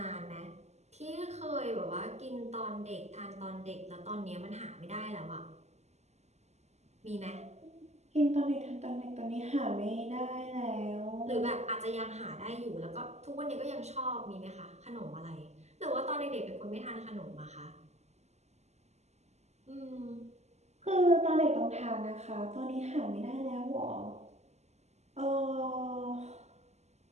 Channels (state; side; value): late; left; 0.33 ms